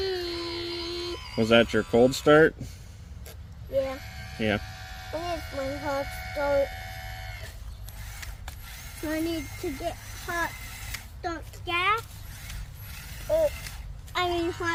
Was that your cold start? Yeah. Yeah. And it's my hot start. So I need to get hot stock gas.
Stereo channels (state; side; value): identical; both; correlation 1.00